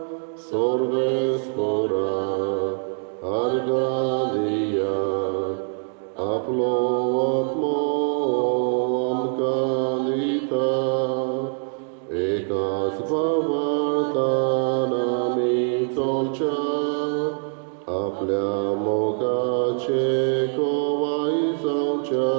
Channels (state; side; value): silent; left; 57 dB below the other